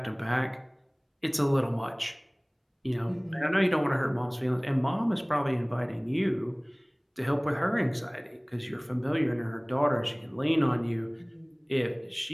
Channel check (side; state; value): both; identical; correlation 1.00